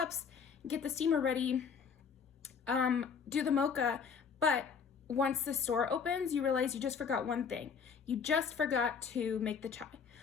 get the steamer ready, do the mocha, but once the store opens, you realize you just forgot one thing. You just forgot to make the chai,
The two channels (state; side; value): quieter; right; 6.3 dB